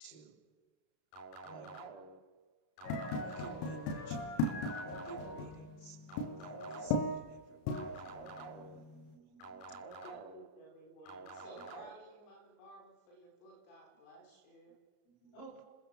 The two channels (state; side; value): late; right; 33 ms